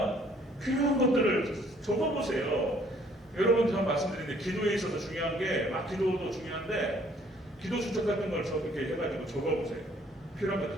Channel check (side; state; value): both; normal; correlation 0.61